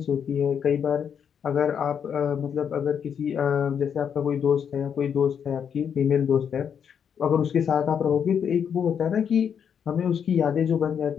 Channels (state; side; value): quieter; right; 7.7 dB